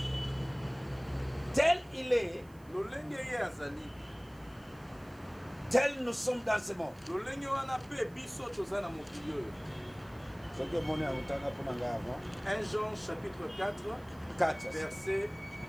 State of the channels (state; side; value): noise; right; hiss, 28 dB below the sound